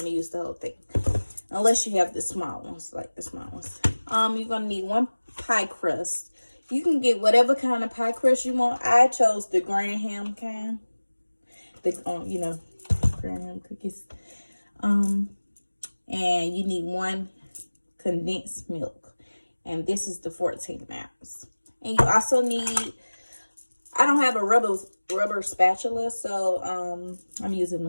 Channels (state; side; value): inverted; both; correlation -1.00